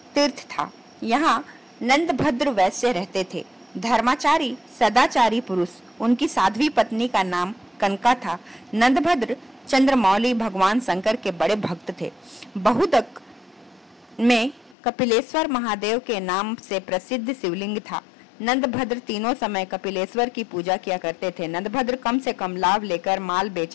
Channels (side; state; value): right; drops out; at 14.8 s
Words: तीर्थ था। यहाँ नंदभद्र वैश्य रहते थे। धर्माचारी सदाचारी पुरुष। उनकी साध्वी पत्नी का नाम कनका था। नंदभद्र चंद्रमौली भगवान शंकर के बड़े भक्त थे। बहुदक में कपिलेश्वर महादेव के नाम से प्रसिद्ध शिवलिंग था। नंदभद्र तीनों समय कपिलेश्वर की पूजा किया करते थे। नंदभद्र कम से कम लाभ लेकर माल